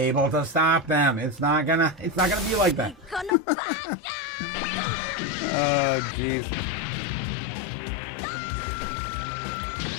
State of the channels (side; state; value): right; drops out; at 3.3 s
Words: to stop them. It's not gonna be like that. Oh, jeez.